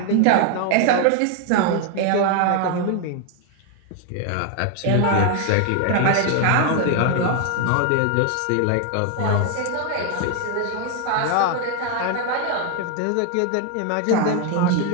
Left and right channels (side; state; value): both; different; correlation 0.00